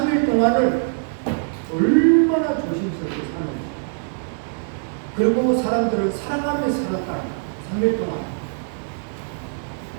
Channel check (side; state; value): left; silent; digital silence